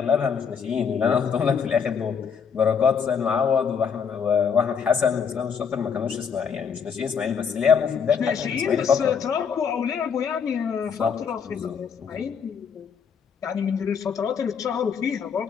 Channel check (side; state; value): right; quieter; 6.6 dB